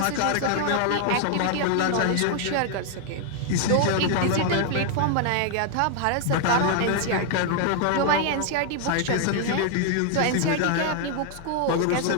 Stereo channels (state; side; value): different; both; correlation 0.00